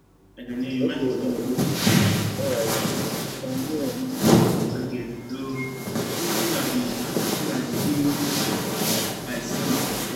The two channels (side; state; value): both; identical; correlation 1.00